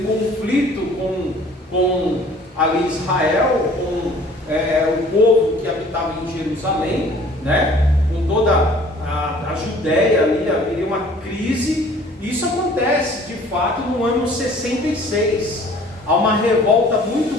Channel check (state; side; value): normal; both; correlation 0.52